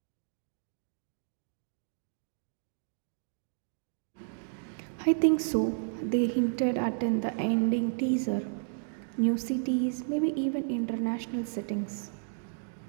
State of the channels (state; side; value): silent; left; digital silence